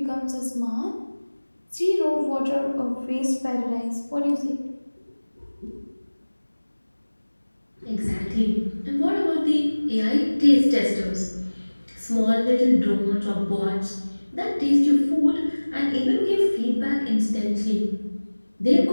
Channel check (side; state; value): both; inverted; correlation -1.00